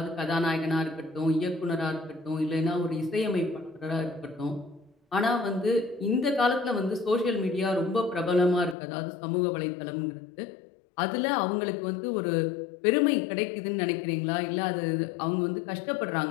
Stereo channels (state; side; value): drops out; right; at 8.8 s